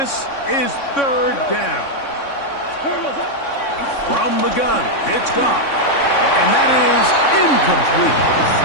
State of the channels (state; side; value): late; right; 3.6 ms